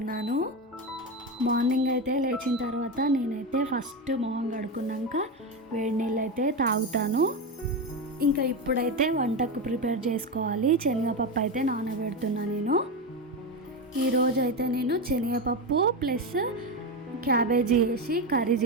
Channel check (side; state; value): both; normal; correlation 0.15